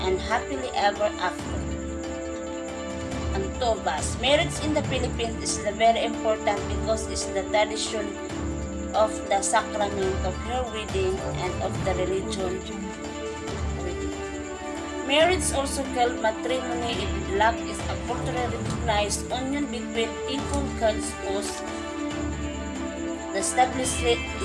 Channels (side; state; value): both; identical; correlation 1.00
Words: and happily ever after. Antobas. Marriage in the Philippines is very important because it's the tradition of the sacrament of her wedding and of the religion wedding. Marriage, also called matrimony in Lac, is a culturally recognized union between equal spouses. The